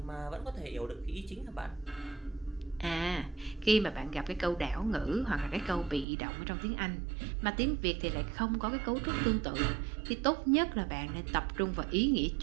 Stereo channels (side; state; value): left; drops out; at 6.1 s